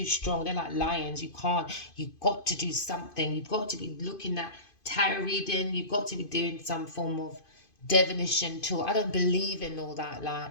strong. They're like lions. You can't. You've got to do something. You've got to be looking at tarot reading. You've got to be doing some form of divination tool. I don't believe in all that,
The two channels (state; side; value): late; right; 2.5 ms